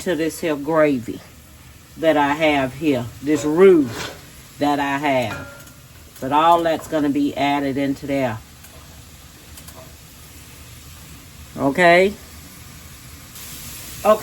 this here gravy that I have here. This roux that I have. But all that's going to be added into there. Okay?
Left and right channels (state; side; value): identical; both; correlation 1.00